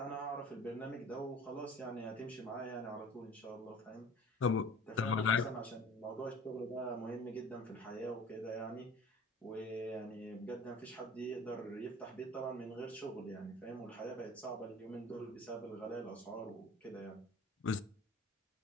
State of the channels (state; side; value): normal; both; correlation 0.44